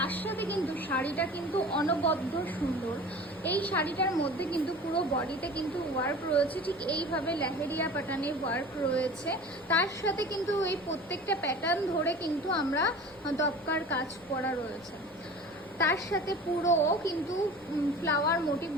সাথে কিন্তু শাড়িটা কিন্তু অনবদ্য সুন্দর। এই শাড়িটার মধ্যে কিন্তু পুরো বডিতে কিন্তু ওয়ার্ক রয়েছে, ঠিক এইভাবে লেহেরিয়া প্যাটার্নের ওয়ার্ক রয়েছে। তার সাথে কিন্তু এই প্রত্যেকটা প্যাটার্ন ধরে কিন্তু আমরা দপকার কাজ করা রয়েছে। তার সাথে পুরো কিন্তু ফ্লাওয়ার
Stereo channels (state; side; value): noise; left; rumble, 28 dB below the sound